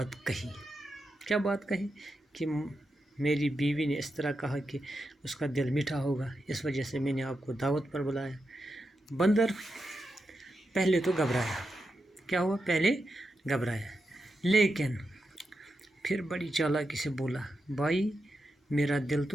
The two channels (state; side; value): normal; both; correlation 0.87